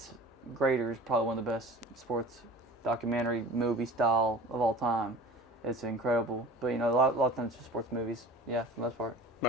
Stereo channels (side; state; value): both; normal; correlation 0.39